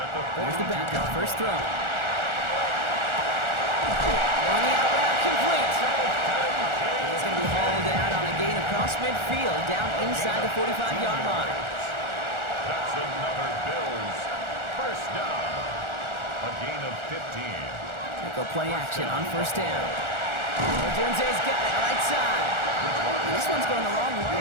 at the 42. There's the backup. First throw. On the out route, complete. He's going to be hauled out on a gain across midfield, down inside the 45-yard line. That's another Bills first down. A gain of 15. They go play action on first down. Dunze's got it right side. And this one's going the wrong way.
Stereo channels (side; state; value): left; late; 1.4 ms